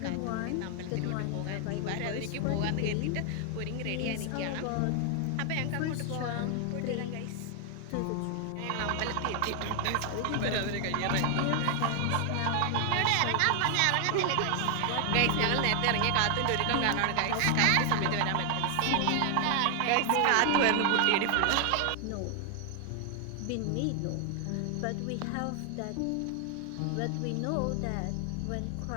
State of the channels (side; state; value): both; different; correlation 0.00